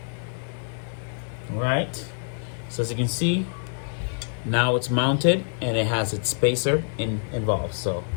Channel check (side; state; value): right; silent; 61 dB below the other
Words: All right, so as you can see, now it's mounted and it has its spacer involved. So